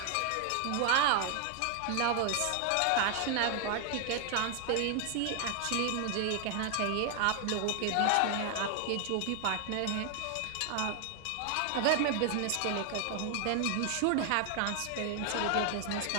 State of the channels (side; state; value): both; different; correlation 0.00